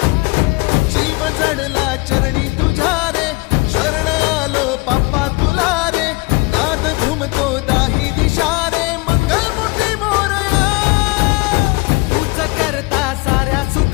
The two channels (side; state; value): right; quieter; 25.6 dB